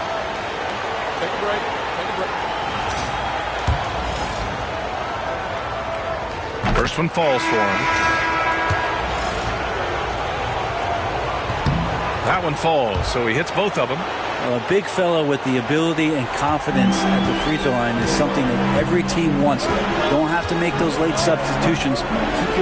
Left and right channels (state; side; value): identical; both; correlation 1.00